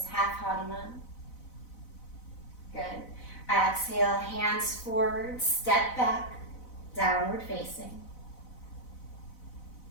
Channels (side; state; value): right; late; 4.0 ms